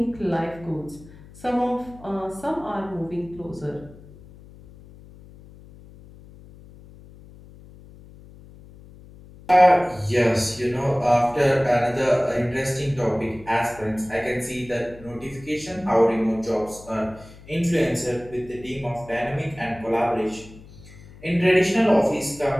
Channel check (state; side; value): noise; left; hum, 21 dB below the sound